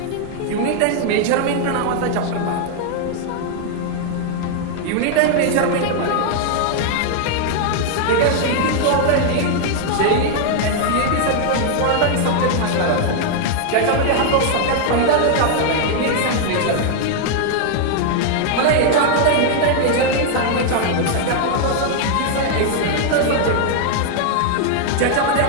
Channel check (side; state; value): both; different; correlation 0.00